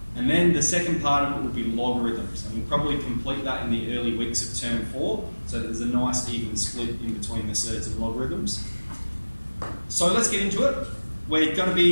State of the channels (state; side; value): inverted; both; correlation -1.00